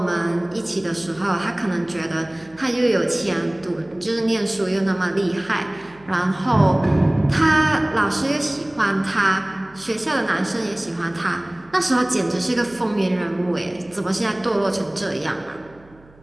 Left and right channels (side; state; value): right; noise; hum, 27 dB below the sound